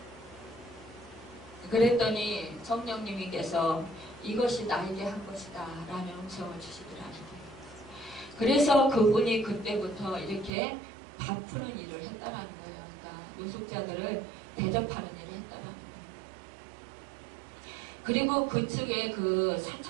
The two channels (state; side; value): drops out; left; at 10.5 s